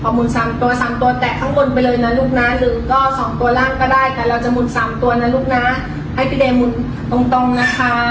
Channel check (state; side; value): identical; both; correlation 1.00